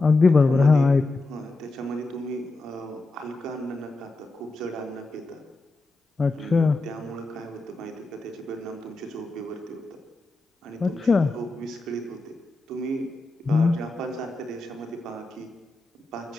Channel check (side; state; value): right; quieter; 3.1 dB